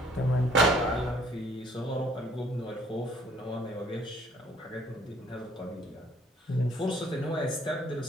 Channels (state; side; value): normal; both; correlation 0.60